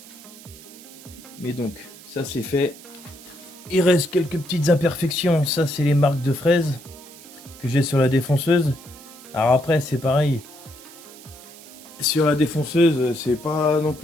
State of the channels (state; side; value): noise; right; hiss, 19 dB below the sound